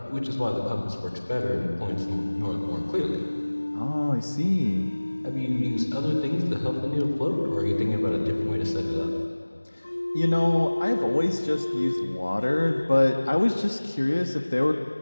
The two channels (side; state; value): both; inverted; correlation -1.00